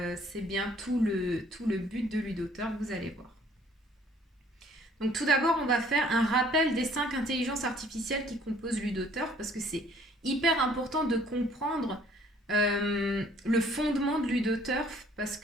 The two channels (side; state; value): both; normal; correlation 0.58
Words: C'est bien tout le but de Ludoturf, vous allez voir. Donc tout d'abord, on va faire un rappel des 5 intelligences artificielles qui composent Ludoturf parce que c'est hyper important de comprendre le fondement de Ludoturf parce